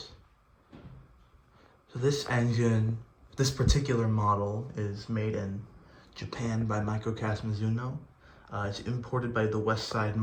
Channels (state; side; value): identical; both; correlation 1.00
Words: So this engine, this particular model, is made in Japan by Mizuno. It's imported by the Westside